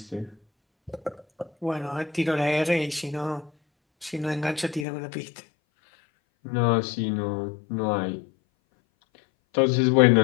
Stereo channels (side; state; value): right; drops out; at 4.9 s